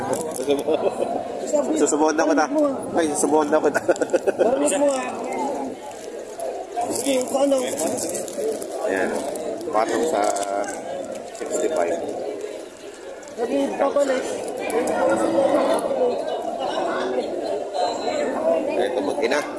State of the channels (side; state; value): both; identical; correlation 1.00